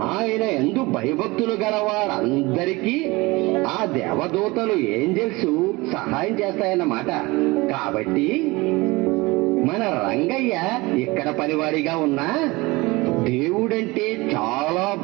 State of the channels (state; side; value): quieter; left; 22.8 dB